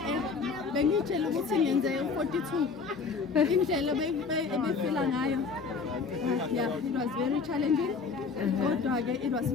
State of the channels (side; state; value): right; quieter; 5.0 dB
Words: bengitshela ukuthi ngenze 42. Indlela ebefila ngayo. Yeah, it was very challenging. Kodwa-ke it was